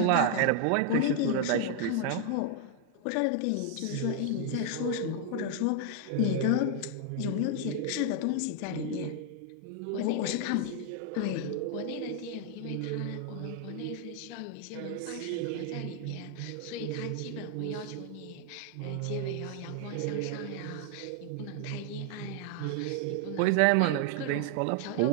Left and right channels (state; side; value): different; both; correlation 0.00